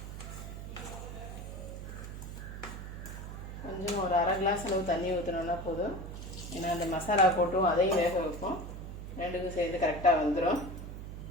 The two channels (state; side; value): noise; right; hum, 9 dB below the sound